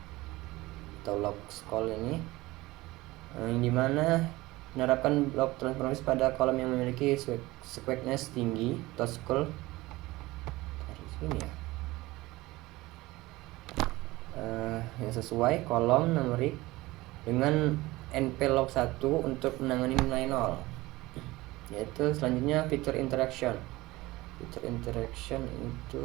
atau log scroll ini, yang dimana menerapkan log transformasi pada kolom yang memiliki squareness tinggi atau scroll dari sini ya, yang sesuai kolom numerik dengan np log 1 untuk menangani nilai 0. Yaitu selanjutnya fitur interaction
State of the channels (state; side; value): quieter; left; 19.6 dB